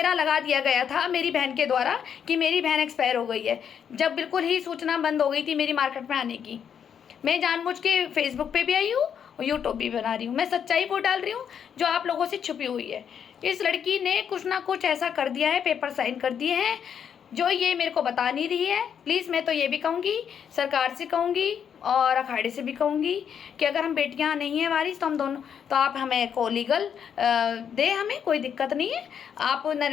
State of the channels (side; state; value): right; quieter; 8.0 dB